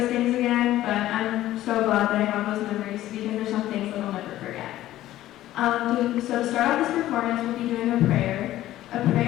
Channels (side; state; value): right; quieter; 14.3 dB